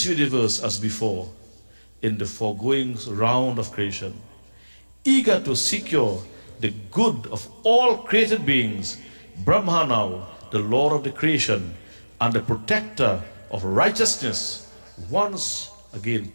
universe as before in the foregoing round of creation, eager to secure the good of all created beings. Brahma now, the Lord of the creation and the protector of righteousness, once again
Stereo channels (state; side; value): inverted; both; correlation -1.00